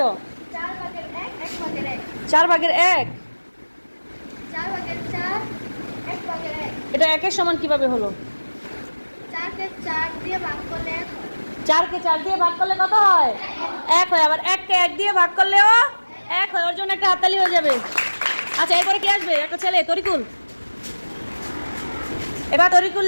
4 ভাগের 1 1 ভাগের 1, 4 ভাগের 1। 4 ভাগের 4 1 ভাগের 1। এটা একের সমান কিভাবে হলো? 4 কে 4 দিয়ে ভাগ করলে 1 হয়। 4 কে 4 দিয়ে ভাগ করলে কত হয়? 1 হয়। আবার 1 কে 1 দিয়ে ভাগ করলেও 1 হয়। ওর জন্য একটা হাততালি হয়ে যাবে। আচ্ছা, এরপরে কি আসবে? একটা ছেলে, তরিকুল। এবার তরিকুল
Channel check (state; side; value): inverted; both; correlation -1.00